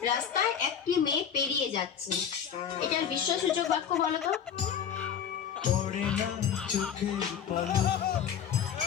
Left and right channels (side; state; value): right; quieter; 8.2 dB